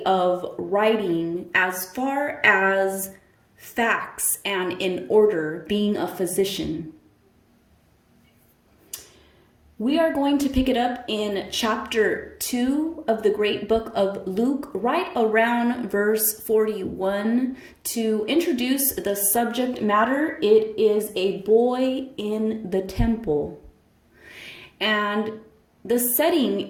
of writing as far as facts and in order, being a physician. We are going to pick it up in chapter 2 of the great book of Luke, right around verse 41. To introduce the subject matter, it is a boy in the temple. And the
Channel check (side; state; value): both; identical; correlation 1.00